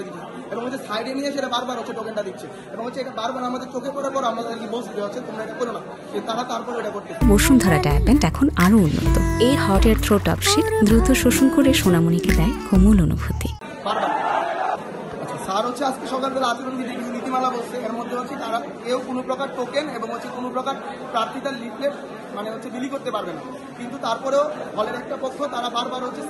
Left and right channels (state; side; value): identical; both; correlation 1.00